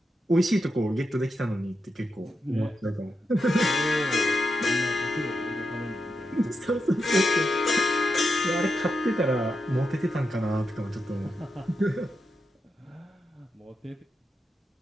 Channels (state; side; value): normal; both; correlation 0.86